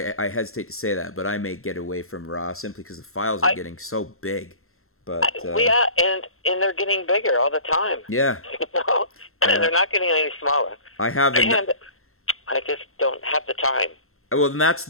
hesitate to say that, but I may get away from RAW simply because the files are getting so big. But and they're getting bigger all the time. Yeah. They're not getting any smaller. And I just don't have the time. Well, and that's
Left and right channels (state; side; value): late; right; 0.62 ms